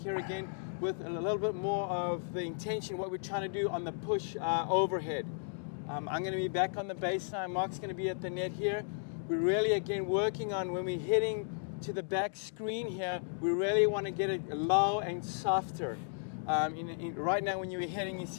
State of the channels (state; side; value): silent; right; digital silence